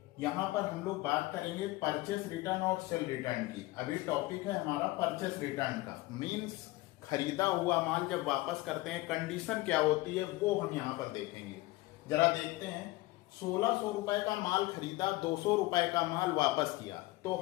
यहाँ पर हम लोग बात करेंगे परचेस रिटर्न और सेल रिटर्न की। अभी टॉपिक है हमारा परचेस रिटर्न का, मीन्स खरीदा हुआ माल जब वापस करते हैं कंडीशन क्या होती है वो हम यहाँ पर देखेंगे। जरा देखते हैं, 1600 रुपए का माल खरीदा, 200 रुपए का माल वापस किया। तो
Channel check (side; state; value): right; quieter; 19.8 dB